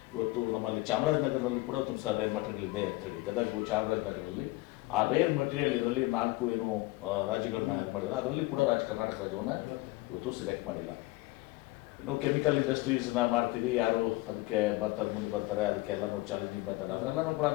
ಇವತ್ತು ನಮ್ಮಲ್ಲಿ ಚಾಮರಾಜನಗರದಲ್ಲಿ ಕೂಡ ಒಂದು ಸಹ ರೇರ್ ಮಟೀರಿಯಲ್ ಇದೆ ಅಂಥೇಳಿ, ಗದಗು ಚಾಮರಾಜನಗರದಲ್ಲಿ. ಆ ರೇರ್ ಮಟೀರಿಯಲ್ ಇದರಲ್ಲಿ 4 ಏನು ರಾಜ್ಯಗಳನ್ನ ಇದು ಮಾಡಿದ್ದಾರೆ, ಅದರಲ್ಲಿ ಕೂಡ ಕರ್ನಾಟಕ ರಾಜ್ಯವನ್ನು ಇವತ್ತು ಸೆಲೆಕ್ಟ್ ಮಾಡಿಲ್ಲ. ಇನ್ನು ಕೆಮಿಕಲ್ ಇಂಡಸ್ಟ್ರೀಸ್ನ ಮಾಡ್ತೀವಿ, ಯಾರು ಅದಕ್ಕೆ ಮುಂದೆ ಬರ್ತಾರೆ, ಅದಕ್ಕೆ ಎಲ್ಲನೂ ಚಾಲೆಂಜಿಂಗ್ ಮೆಥಡ್, ಅದರೆಲ್ಲನೂ ಕೂಡ.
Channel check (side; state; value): right; quieter; 20.9 dB